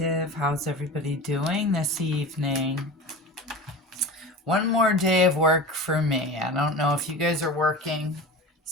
How's everybody doing this evening? One more day of work for me. I don't know if you guys are working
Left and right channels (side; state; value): both; normal; correlation 0.32